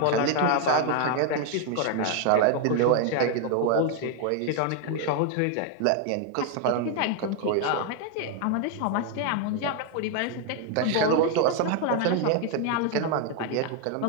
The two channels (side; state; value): both; different; correlation 0.00